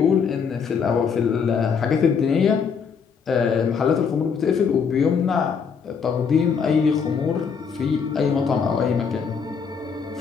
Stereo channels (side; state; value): right; quieter; 6.2 dB